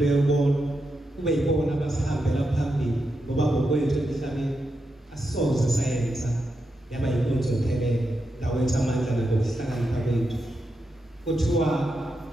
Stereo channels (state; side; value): normal; both; correlation 0.86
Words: bona kube yibona abasihambela phambili ngoba ngokwethu emhlabeni asisoze sayenza yaba inkonzo ephelele dawethu amandla nokuhlakanipha kwethu kuthiwa